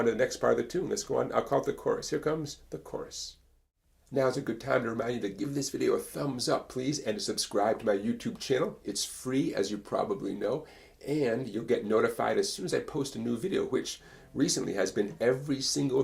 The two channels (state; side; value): identical; both; correlation 1.00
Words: to the next part of the tune. Let's go on, I'll call it the chorus. Here comes the chorus. Now is a good time to remind you to give this video a thumbs up, please, and to subscribe to my YouTube channel. It's free, as you probably know, and you'll get notified as soon as I post a new video, which recently has been every single